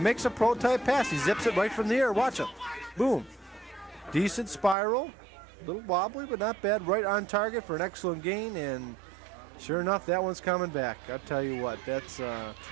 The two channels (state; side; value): drops out; left; at 4.8 s